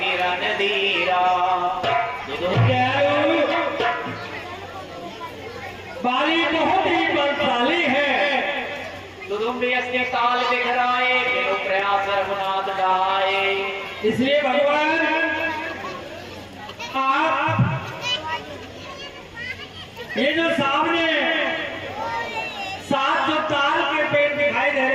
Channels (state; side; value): identical; both; correlation 1.00